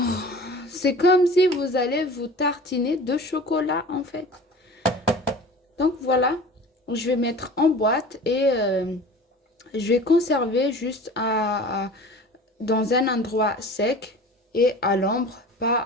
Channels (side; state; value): both; normal; correlation 0.40